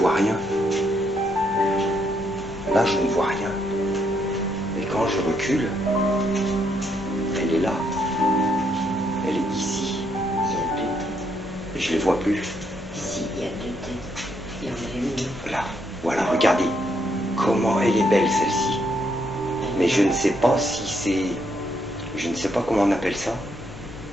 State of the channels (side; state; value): both; normal; correlation 0.74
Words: rien. Là, je ne vois rien. Et quand je recule, elle est là. Elle est ici. Il y a deux têtes. Je ne les vois plus. Ici, il y a deux têtes. Il y en a une. Là, voilà, regardez. Comment elle est belle, celle-ci. Mais je ne sais pas si c'est... Je ne sais pas comment on appelle ça.